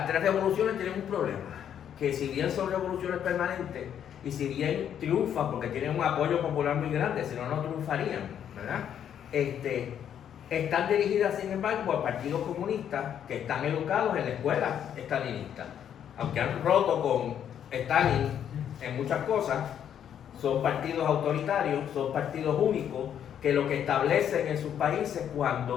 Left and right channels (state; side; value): quieter; right; 9.3 dB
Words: tres revoluciones tienen un problema, que si bien son revoluciones permanentes y si bien triunfan porque tienen un apoyo popular muy grande, si no, no triunfarían, ¿verdad? Están dirigidas, sin embargo, por partidos comunistas que están educados en la escuela stalinista. Aunque han roto con Stalin en muchas cosas, son partidos autoritarios, son partidos únicos, que lo que establecen en sus países